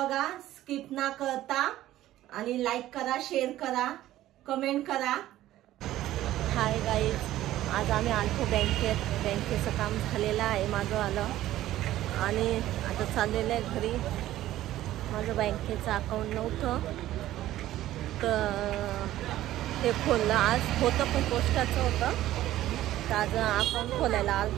स्किप ना करता आणि लाईक करा, शेअर करा, कमेंट करा. हाय गाईज, आज आम्ही आलतो बँकेचं काम झालेलं आहे माझं आलं आणि आता चाललेलं आहे घरी. माझं बँकेचं अकाउंट नव्हतं तर ते खोललं. आज होतं पण पोस्टाचं होतं, तर आज अकाउंट खोलायला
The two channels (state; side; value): quieter; left; 14.3 dB